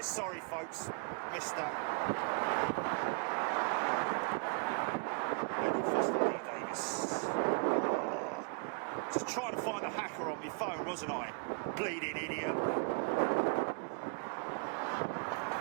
Sorry, folks. Missed that. Davis. Oh, just trying to find the hacker on my phone, wasn't I? Bleeding idiot.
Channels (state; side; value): quieter; left; 34.7 dB